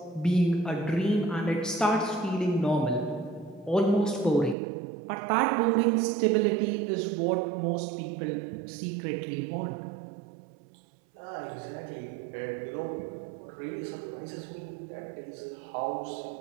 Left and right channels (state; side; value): drops out; left; at 4.5 s